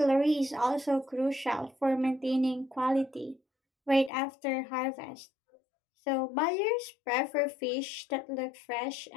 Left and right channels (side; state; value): right; drops out; at 4.1 s